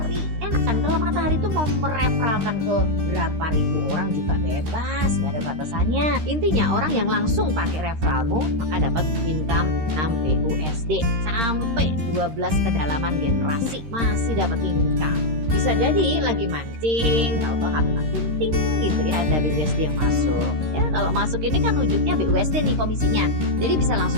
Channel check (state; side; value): late; left; 13 ms